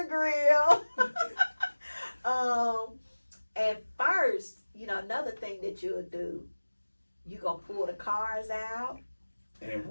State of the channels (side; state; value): both; inverted; correlation -1.00